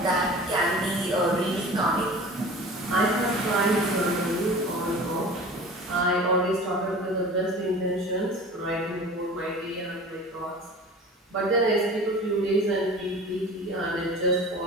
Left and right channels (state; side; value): normal; both; correlation 0.39